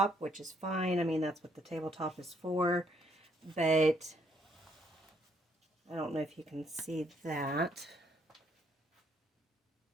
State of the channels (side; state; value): both; normal; correlation 0.70